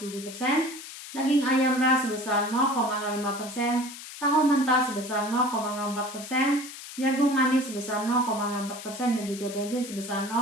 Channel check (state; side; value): noise; left; hiss, 13 dB below the sound